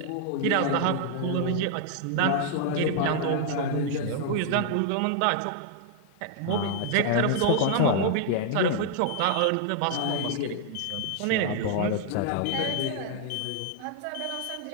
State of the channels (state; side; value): different; both; correlation 0.00